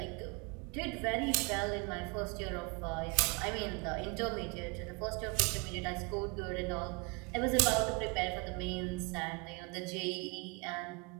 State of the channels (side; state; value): left; quieter; 30.0 dB